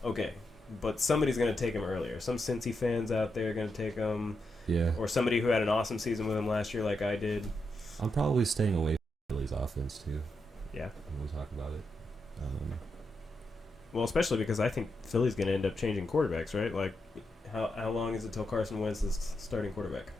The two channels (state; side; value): normal; both; correlation 0.84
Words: okay. But somebody's going to take him earlier. Some Cincy fans out there are going to take him. Yeah. Or somebody who had an awesome season with him last year like I did. I'm probably staying away from Philly's offense too. Yeah. When we talk about it. Well, especially because I think Philly's going to end up changing quarterbacks, right? Like, how long is it till Carson Wentz is starting quarterback?